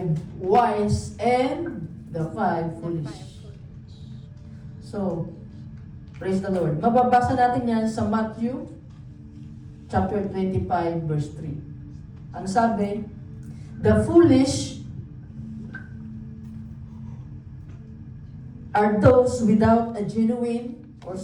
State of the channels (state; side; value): identical; both; correlation 1.00